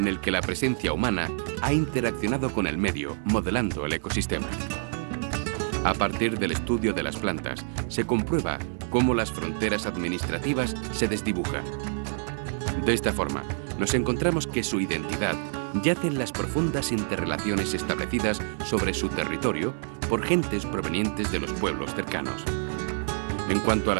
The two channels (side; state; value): left; silent; digital silence